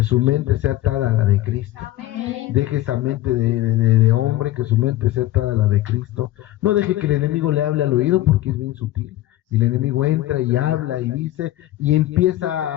su mente sea atada a la de Cristo. Deje esa mente de hombre, que su mente sea atada a la de Cristo. No deje que el enemigo le hable al oído, porque es bien sutil. Y el enemigo entra y habla y dice, y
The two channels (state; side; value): quieter; right; 15.3 dB